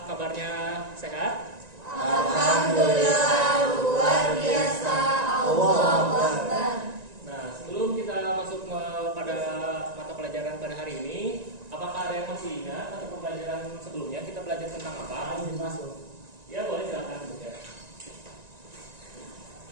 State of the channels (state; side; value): late; left; 1.9 ms